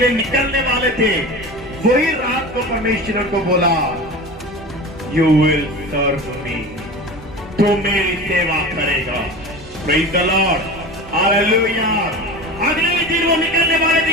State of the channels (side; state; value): both; normal; correlation 0.32